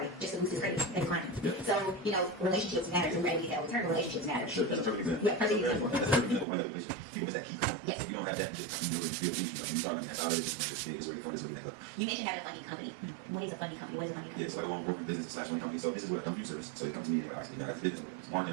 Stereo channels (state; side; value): drops out; left; at 6.5 s